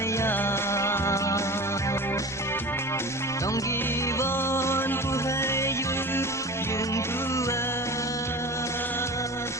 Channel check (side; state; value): both; normal; correlation 0.34